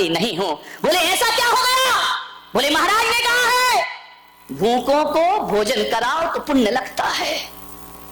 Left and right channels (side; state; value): both; identical; correlation 1.00